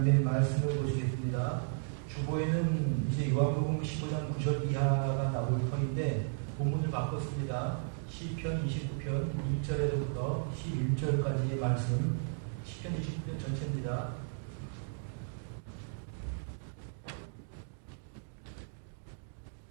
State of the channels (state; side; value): silent; left; digital silence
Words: 말씀을 보시겠습니다. 주보에는 이제 요한복음 15장 9절 이하가 나올 터인데 본문을 바꿨습니다. 시편 29편 1절에서부터 11절까지의 말씀, 시편 29편 전체입니다.